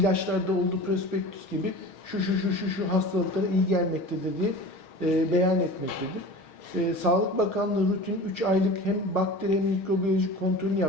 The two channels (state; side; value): late; right; 6.4 ms